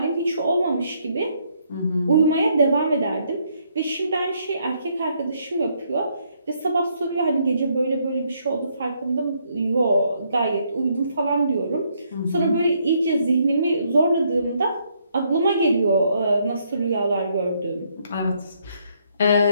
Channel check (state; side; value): inverted; both; correlation -0.72